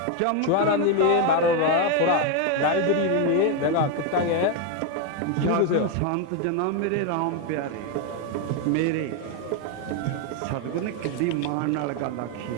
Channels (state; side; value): different; both; correlation 0.01